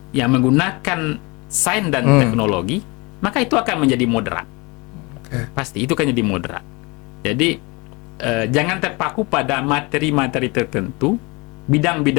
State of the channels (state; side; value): quieter; right; 26.8 dB